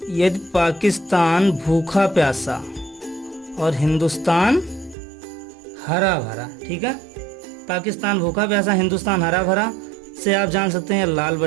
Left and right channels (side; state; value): left; drops out; at 5.0 s